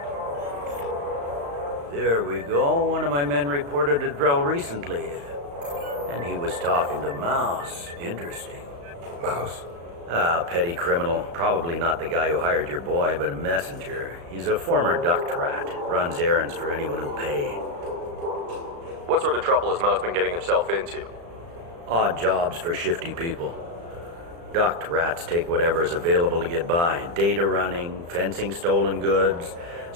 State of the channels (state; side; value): late; left; 35 ms